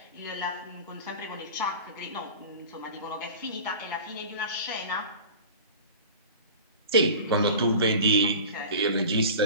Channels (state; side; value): inverted; both; correlation -0.37